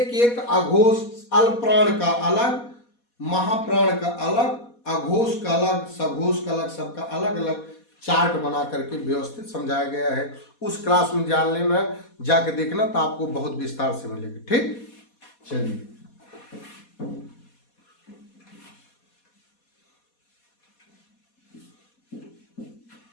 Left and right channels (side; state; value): right; late; 4.2 ms